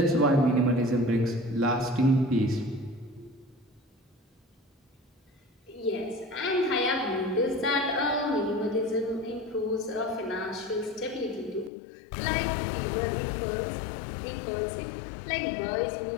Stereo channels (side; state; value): right; drops out; at 11.7 s